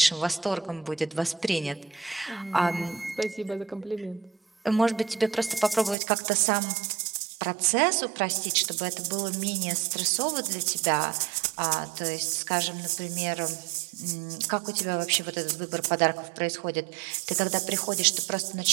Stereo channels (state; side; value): drops out; left; at 6.0 s